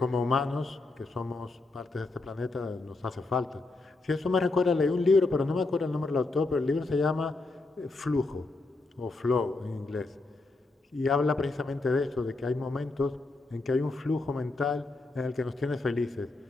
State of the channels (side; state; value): right; quieter; 3.3 dB